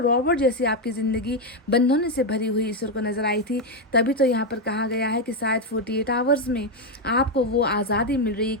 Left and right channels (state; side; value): normal; both; correlation 0.05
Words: जैसी आपकी ज़िंदगी बंधनों से भरी हुई ईश्वर को नज़र आई थी। तभी तो यहाँ पर कहा गया है कि शायद 48 आवर्स में आपको वो आज़ादी मिल रही है